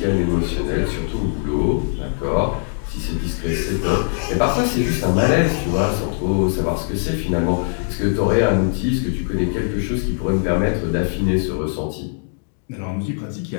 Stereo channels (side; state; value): right; silent; digital silence